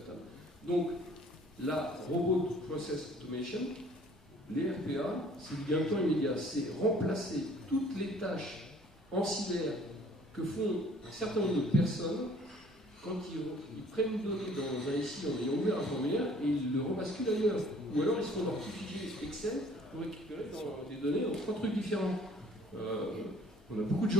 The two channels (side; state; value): both; normal; correlation 0.54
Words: Donc, la Robot Process Automation, les RPA, c'est du gain de temps immédiat. C'est remplacer toutes les tâches ancillaires que font un certain nombre de personnes quand ils prennent une donnée dans un SI en ayant ouvert un formulaire et ils le rebasculent ailleurs. Ou alors, ils se font leur petit fichier Excel pour récupérer des données dans 3 trucs différents. On a beaucoup de